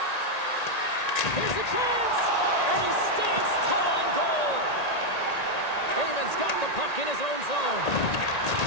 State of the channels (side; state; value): right; late; 1.8 ms